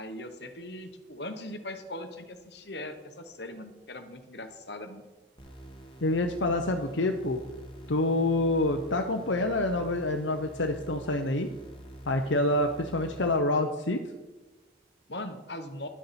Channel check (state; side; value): normal; both; correlation 0.05